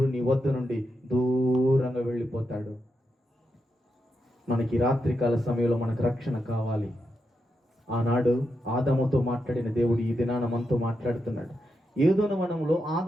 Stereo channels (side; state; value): both; normal; correlation 0.85